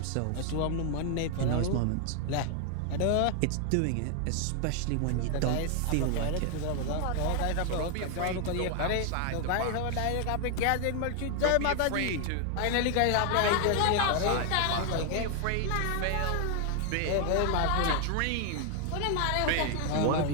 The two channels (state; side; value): different; both; correlation 0.00